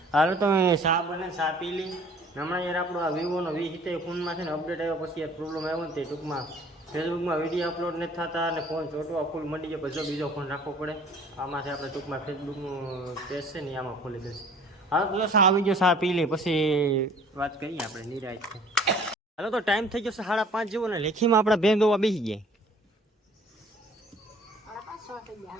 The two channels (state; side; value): normal; both; correlation 0.52